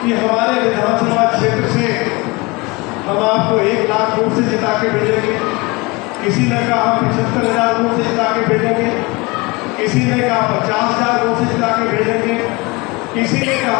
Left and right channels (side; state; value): right; quieter; 25.2 dB